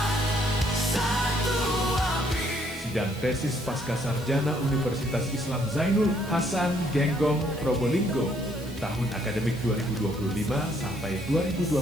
satu api. Sidang tesis pasca sarjana Universitas Islam Zainul Hasan Genggong Probolinggo tahun akademik 2025 sampai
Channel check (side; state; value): right; noise; hiss, 20 dB below the sound